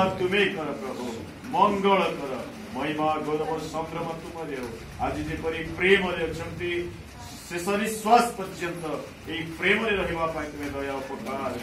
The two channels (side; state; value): both; identical; correlation 1.00